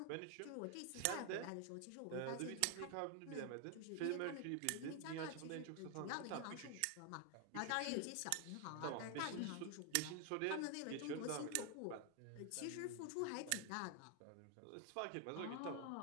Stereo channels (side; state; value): both; different; correlation 0.01